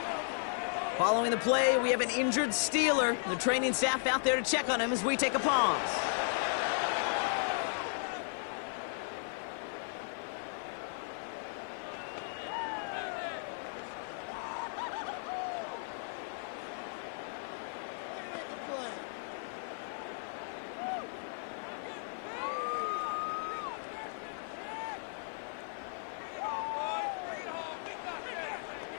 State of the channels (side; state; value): right; silent; digital silence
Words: Following the play, we have an injured Steeler. The training staff out there to check on him as we take a pause.